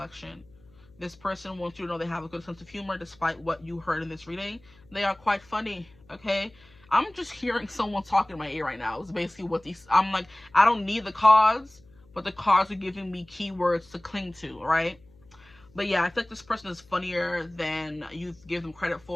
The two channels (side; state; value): left; noise; hum, 28 dB below the sound